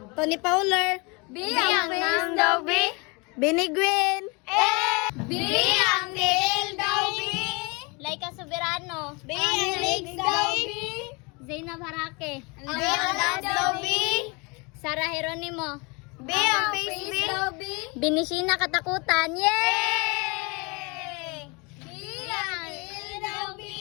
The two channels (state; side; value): quieter; right; 29.2 dB